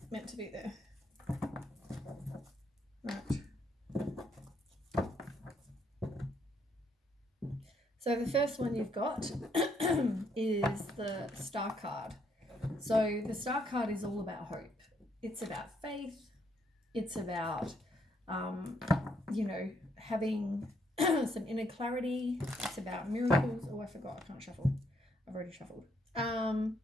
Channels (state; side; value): normal; both; correlation 0.72